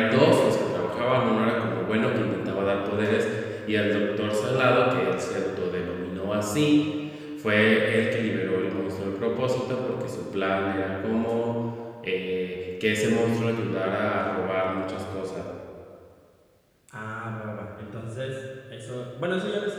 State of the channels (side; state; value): both; identical; correlation 1.00